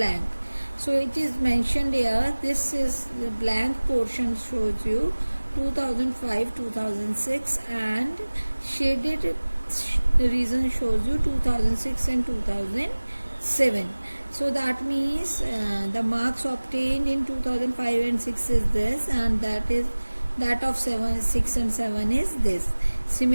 So it is mentioned here, this is the blank portion shows you 2005-2006 and shaded region shows you 2006 and 2007. So that means the marks obtained in 2005 and 6 is this, and that of 7, 6 and 7 is this.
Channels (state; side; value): inverted; both; correlation -1.00